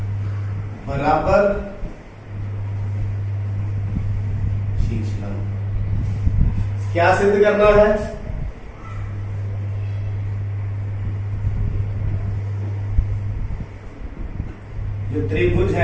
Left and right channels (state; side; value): identical; both; correlation 1.00